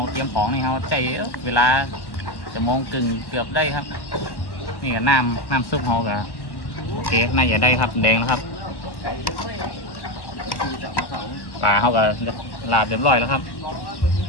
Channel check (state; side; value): late; right; 1.1 ms